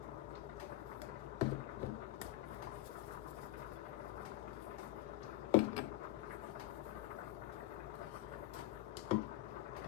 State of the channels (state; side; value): quieter; right; 15.7 dB